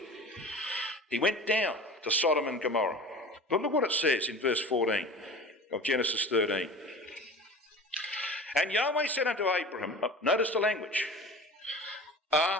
He went down to Sodom and Gomorrah. But look what it says in verse 14 of Genesis 13. And Yahweh said unto Abraham, notice the language,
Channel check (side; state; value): both; normal; correlation 0.38